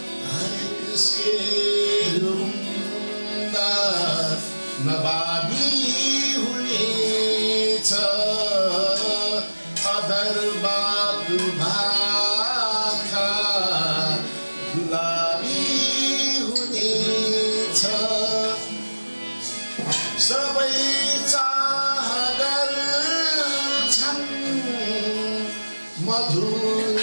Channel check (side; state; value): both; inverted; correlation -1.00